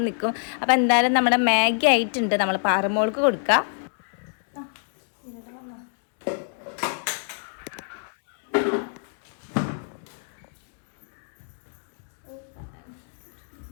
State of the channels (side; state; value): right; silent; digital silence